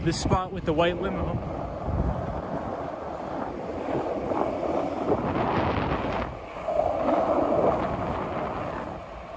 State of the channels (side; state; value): both; identical; correlation 1.00